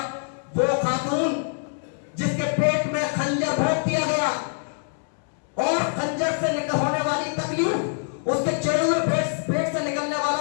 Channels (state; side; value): silent; right; 62 dB below the other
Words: वो खातून जिसके पेट में खंजर भोंक दिया गया और खंजर से निकल होने वाली तकलीफ, उसके चेहरे में पेट से निकलने वाला